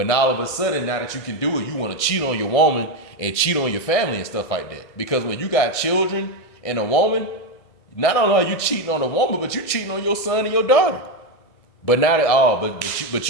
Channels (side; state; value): right; late; 1.6 ms